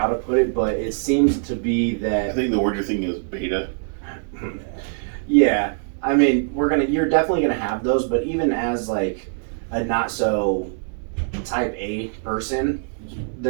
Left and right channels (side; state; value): left; silent; digital silence